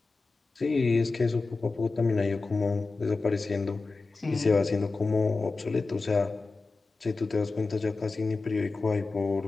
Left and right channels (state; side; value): quieter; right; 3.8 dB